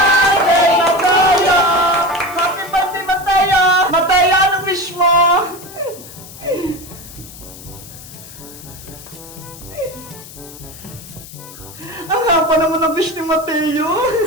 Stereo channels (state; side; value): noise; left; hiss, 17 dB below the sound